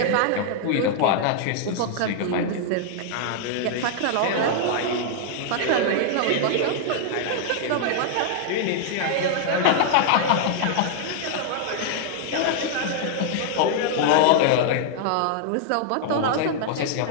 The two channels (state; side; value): different; both; correlation -0.01